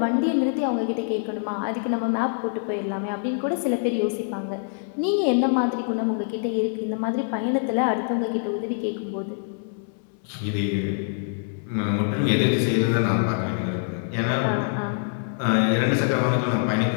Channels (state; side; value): silent; right; digital silence